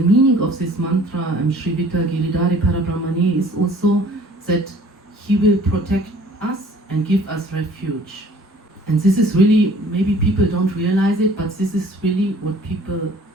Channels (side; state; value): both; normal; correlation 0.52